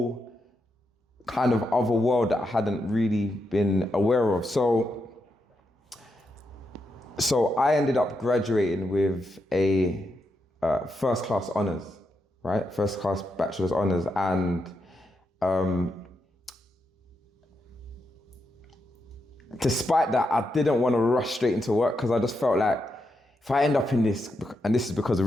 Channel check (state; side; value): normal; both; correlation 0.83